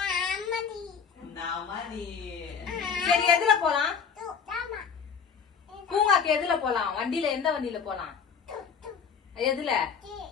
சரி எதுல போலாம்? பூங்காக்கு எதுல போலாம்? வண்டியில எந்த வண்டியில போலாம்? எதுல?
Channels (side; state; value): right; quieter; 6.4 dB